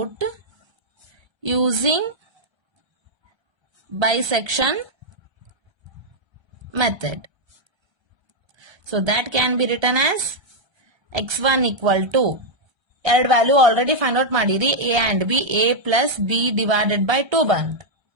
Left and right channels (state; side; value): late; left; 1.3 ms